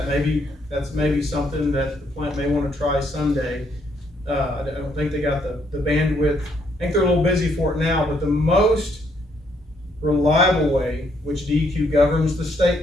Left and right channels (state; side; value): normal; both; correlation 0.71